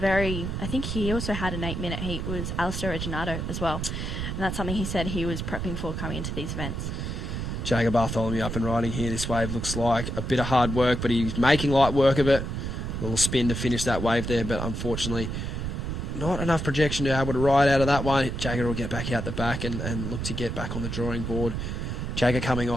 think he also had an 8-minute heat was Alistair Reginardo as well. And that's something he said he was prepping for coming into these events. Jagger Bartholomew up and riding here. This wave looks like a bit of hard work, but he's making light work of it. A little spin to finish that wave there, but unfortunately not enough projection to be able to ride out of that one. Jagger will get back out the back and look to get back on the drawing board. Jagger coming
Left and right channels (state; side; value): noise; right; rumble, 4 dB below the sound